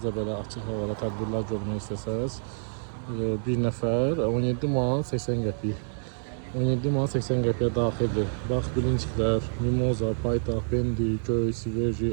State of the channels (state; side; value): silent; left; digital silence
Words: də belə açıq havada tədbirlər görmək istəsəniz, bir nəfər 17 manat 80 qəpik. 17 manat 80 qəpiyə daxildir. Bax, bilinçiklər, mimoza, paytaxt, bendi, göy,